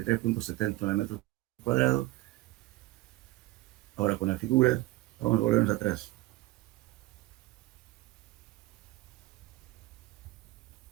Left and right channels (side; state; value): left; quieter; 18.7 dB